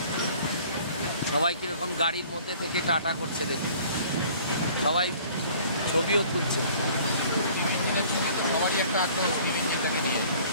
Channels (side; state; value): both; inverted; correlation -0.52